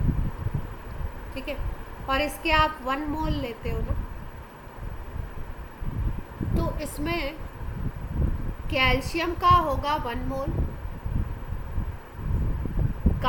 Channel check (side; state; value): both; identical; correlation 1.00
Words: ठीक है, और इसके आप 1 मोल लेते हो ना, तो इसमें कैल्शियम का होगा 1 मोल,